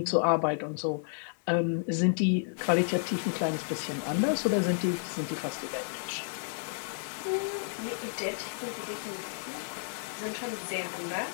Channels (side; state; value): right; silent; 57 dB below the other